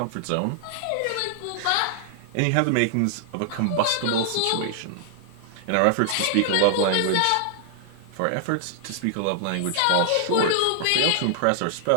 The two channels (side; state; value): both; different; correlation -0.01